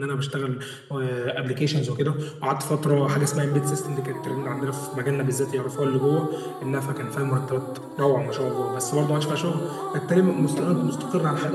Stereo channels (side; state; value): both; identical; correlation 1.00